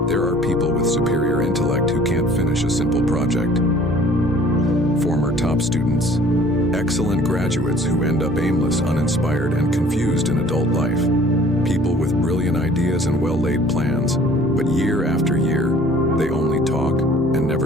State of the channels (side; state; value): left; noise; rumble, 25 dB below the sound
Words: There are people with superior intellect who can't finish a simple project. Former top students, excellent graduates who end up aimless, uninspired, and confused in adult life. People with brilliant ideas and well-laid plans, but year after year, they only talk and